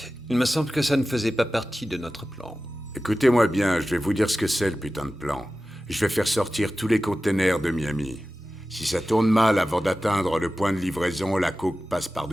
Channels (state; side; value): normal; both; correlation 0.95